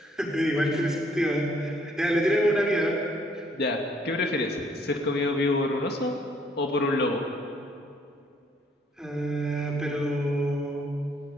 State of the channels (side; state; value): both; normal; correlation 0.65